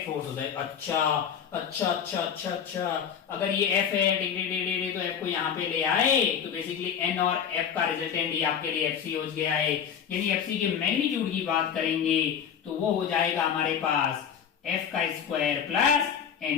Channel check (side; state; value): right; quieter; 7.9 dB